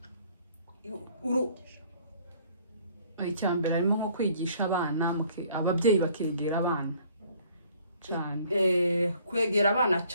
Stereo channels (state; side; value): inverted; both; correlation -0.58